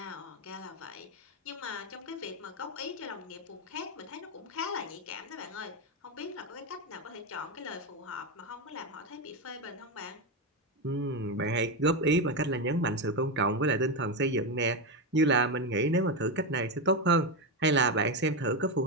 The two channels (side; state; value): both; normal; correlation 0.11